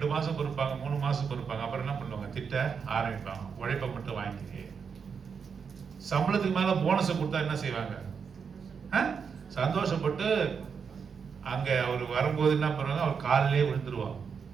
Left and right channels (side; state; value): left; quieter; 6.2 dB